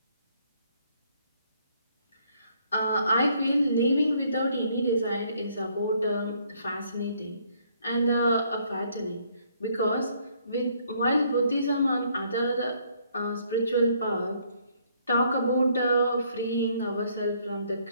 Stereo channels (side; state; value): both; inverted; correlation -0.67